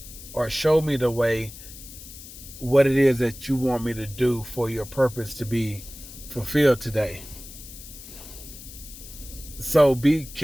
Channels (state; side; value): noise; left; hiss, 15 dB below the sound